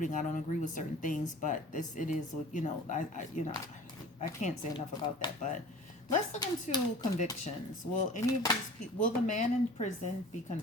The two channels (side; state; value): both; normal; correlation 0.43